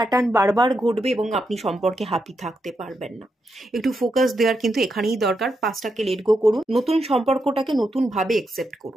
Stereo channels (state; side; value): normal; both; correlation 0.84